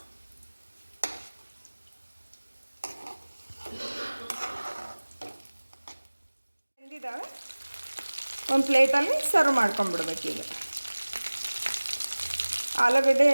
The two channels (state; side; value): inverted; both; correlation -1.00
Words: ಬೆಂದಿದ್ದಾವೆ, ಒಂದು ಪ್ಲೇಟಲ್ಲಿ ಸರ್ವ್ ಮಾಡ್ಕೊಂಡ್ಬಿಡ್ಬೇಕು. ಈಗ ಆಲೂಗಡ್ಡೆ